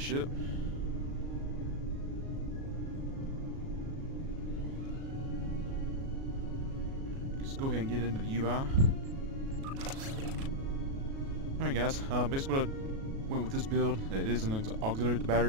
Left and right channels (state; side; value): late; left; 37 ms